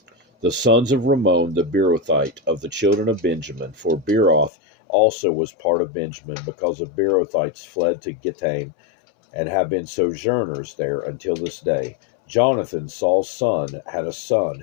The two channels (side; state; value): right; drops out; at 4.5 s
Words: the sons of Rimmon the Beerothite, of the children of Benjamin. For Beeroth also was part of Benjamin, because the Beerothites fled to Gittaim, and have been sojourners there until this day. Jonathan, Saul's son, had a son